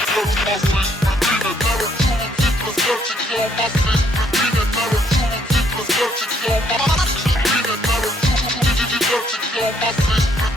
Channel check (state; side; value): normal; both; correlation 0.68